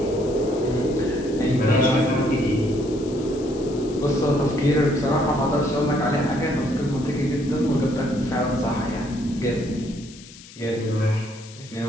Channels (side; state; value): left; noise; hiss, 19 dB below the sound